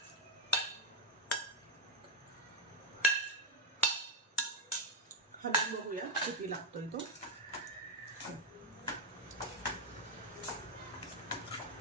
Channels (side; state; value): both; normal; correlation 0.02